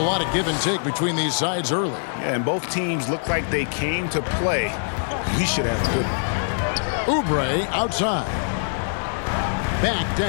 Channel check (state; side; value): silent; right; digital silence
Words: lot of give and take between these sides early. Yeah, and both teams look like they came to play. We should have a good one. Oubre outside. Back to